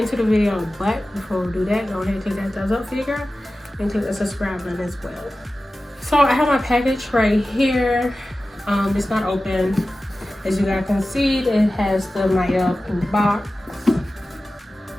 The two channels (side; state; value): both; normal; correlation 0.95